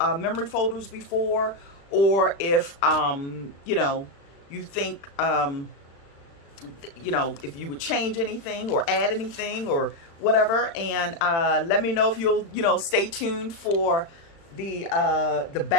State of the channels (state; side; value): late; right; 36 ms